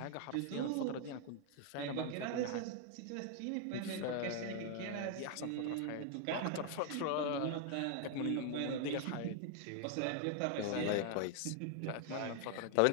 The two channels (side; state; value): both; different; correlation 0.00